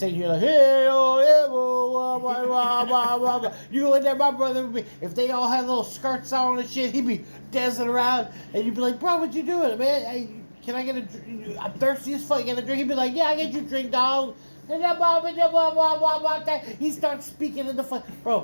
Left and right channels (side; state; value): both; inverted; correlation -1.00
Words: you're like, hey, oh, yeah, whoa, blah, blah, blah, blah, blah. You go in there, my brother would be, if they all had little skirts on and shit, he'd be dancing around, and you'd be like, bro, what you doing, man? Hey, can I get a drink? I'm thirsty as fuck. Get a drink? He'd be like, yeah, I get you a drink, dog. He starts speaking in the fuck.